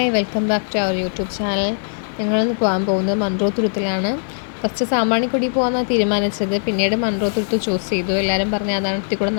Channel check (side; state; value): right; silent; 65 dB below the other